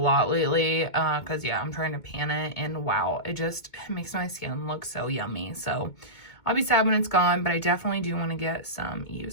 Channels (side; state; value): right; late; 2.2 ms